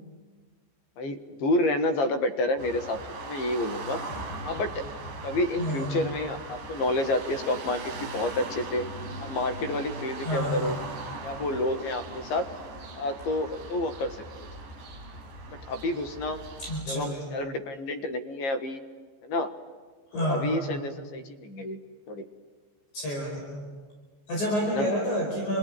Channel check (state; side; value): late; right; 15 ms